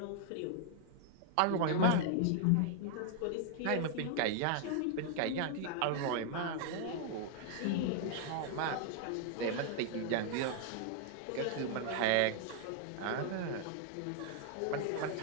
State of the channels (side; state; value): both; different; correlation 0.00